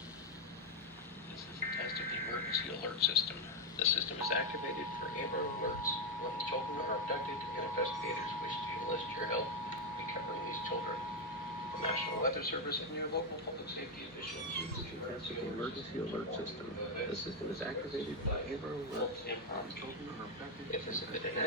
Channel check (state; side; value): normal; both; correlation 0.04